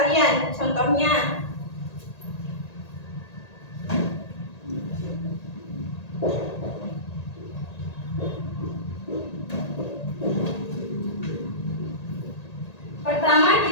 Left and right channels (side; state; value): right; late; 1.8 ms